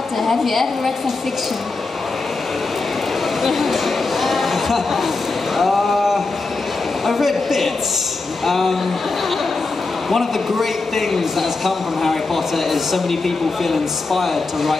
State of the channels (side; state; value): right; quieter; 3.7 dB